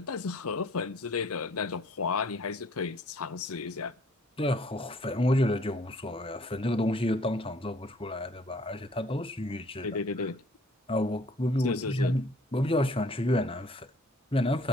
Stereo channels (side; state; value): both; normal; correlation 0.57